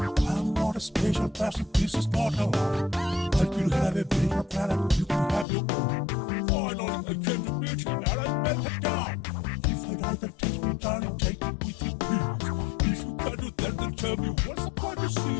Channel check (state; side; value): drops out; right; at 5.5 s